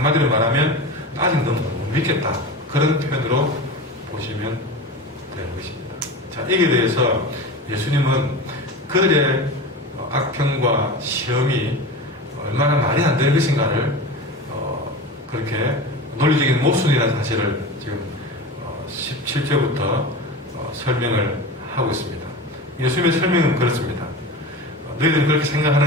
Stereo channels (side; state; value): both; normal; correlation 0.29